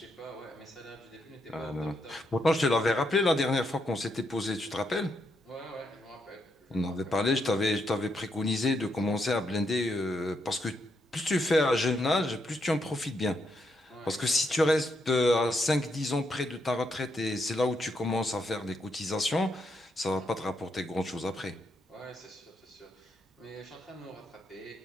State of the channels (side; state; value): both; normal; correlation 0.79